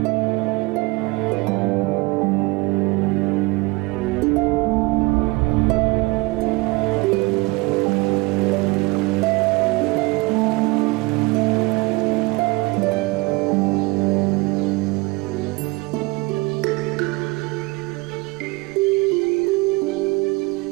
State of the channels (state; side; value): quieter; left; 24.2 dB